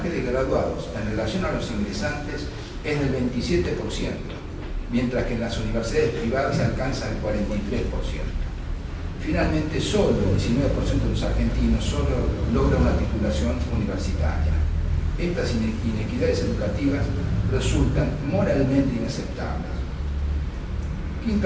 de graduados en relación a los ingresantes es del 27%, mientras que en las universidades privadas se alcanza el 43%. Finalmente, solo el 19% de los argentinos solo logra una titulación universitaria. Estas inequidades educativas resultan moralmente inaceptables.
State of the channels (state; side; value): identical; both; correlation 1.00